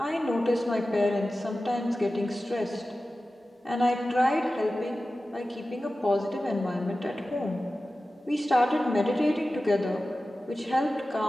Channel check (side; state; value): both; normal; correlation 0.95